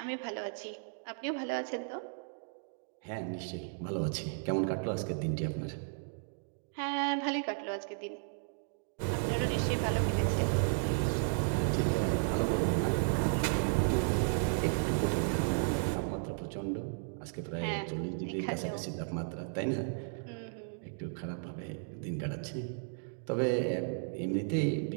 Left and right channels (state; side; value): silent; left; digital silence